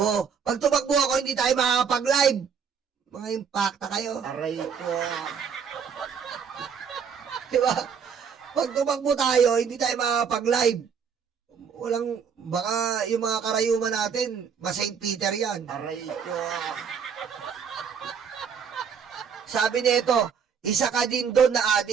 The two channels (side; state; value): left; quieter; 6.8 dB